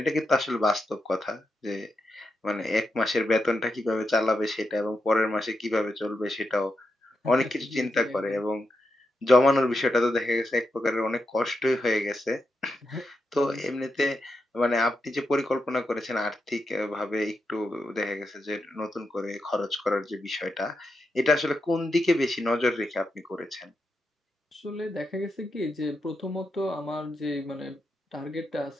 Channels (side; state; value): both; normal; correlation 0.85